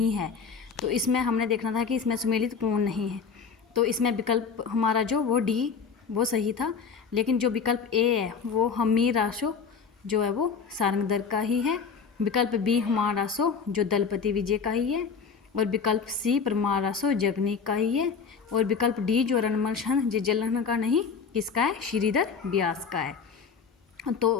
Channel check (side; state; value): right; quieter; 5.8 dB